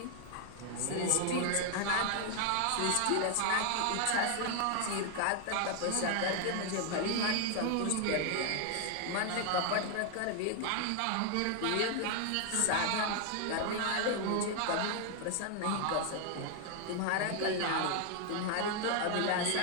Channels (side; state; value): both; different; correlation 0.00